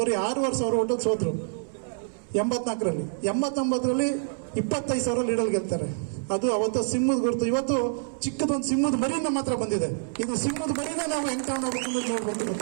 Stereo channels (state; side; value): silent; left; 60 dB below the other